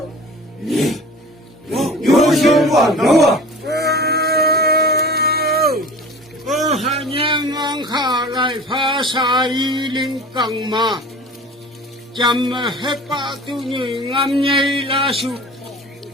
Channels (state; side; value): normal; both; correlation 0.40